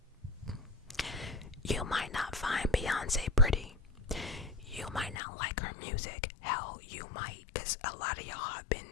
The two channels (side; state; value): right; drops out; at 5.2 s